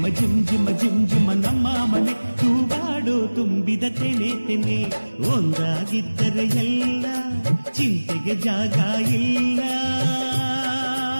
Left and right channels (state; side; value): inverted; both; correlation -1.00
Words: ಜುಮ್ ಜುಮ ಜುಮ್ ಜುಮ ನಮ್ಮ ಮನೆ ತೂಗಾಡೋ ತುಂಬಿದ ತೆನೆ ತೆನೆ ಒಂದಾಗಿದ್ದರೆ ಎಲ್ಲ ಚಿಂತೆಗೆ ಜಾಗ ಇಲ್ಲ